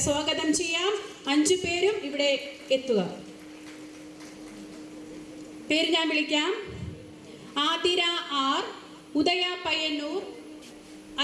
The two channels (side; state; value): both; identical; correlation 1.00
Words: സ്വാഗതം ചെയ്യാം. 5 പേരും ഇവിടെ എത്തുക. പേര് ഞാൻ വിളിക്കാം. ആതിര ആർ, ഉദയ പയ്യന്നൂർ,